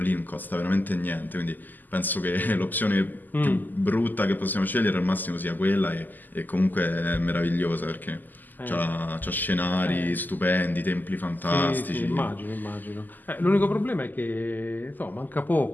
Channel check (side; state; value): right; late; 0.086 ms